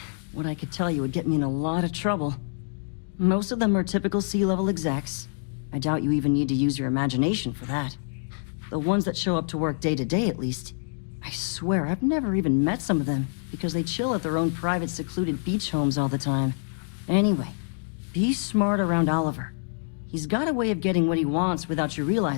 What I could tell you would get me in a lot of trouble. Most of them are typical C-level execs. I doubt you even need to use your imagination for that. The ones that show up to work day to day, at least. I swear, I've never even met some of them, because they chill at their own private secluded beach homes all the time. Anyway, be smart around Oliver. He's got a way of getting what he wants without you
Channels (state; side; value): silent; right; digital silence